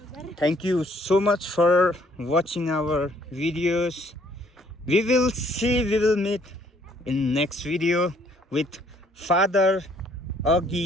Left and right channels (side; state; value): both; normal; correlation 0.64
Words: Thank you so much for watching our videos. We will meet in next video with Father